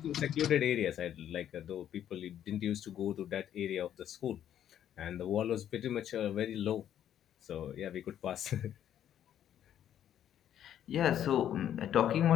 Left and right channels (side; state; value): right; quieter; 10.4 dB